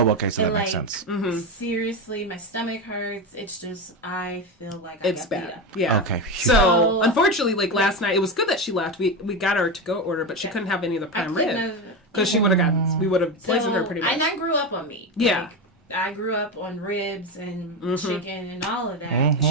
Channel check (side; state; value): both; normal; correlation 0.17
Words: Oh, okay, so that And, makes like, sense. Seriously, my stomach hurts. It's just I feel like It's I got beat bad. up. Yeah. Okay. So unfortunately, like last night, it was good that she left. We got her to go order, but she couldn't have any of the I prime couldn't rib have- because she would have gotten. We would have poisoned her pretty much. And I grew up on meat. Yeah. Like, I grew up on ribs and chicken and all of that.